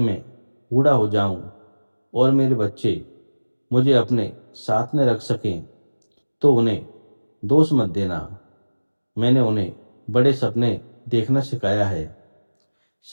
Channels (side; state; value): both; inverted; correlation -1.00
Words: बूढ़ा हो जाऊं और मेरे बच्चे मुझे अपने साथ में रख सकें तो उन्हें दोष मत देना। मैंने उन्हें बड़े सपने देखना सिखाया है।